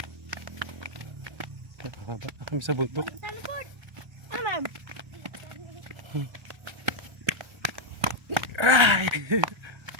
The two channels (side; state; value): left; late; 1.3 ms